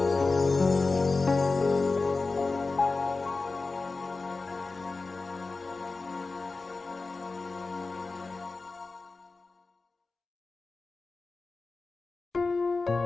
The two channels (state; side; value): quieter; right; 3.8 dB